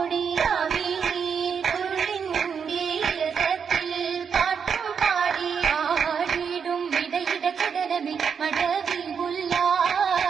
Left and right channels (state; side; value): quieter; left; 6.7 dB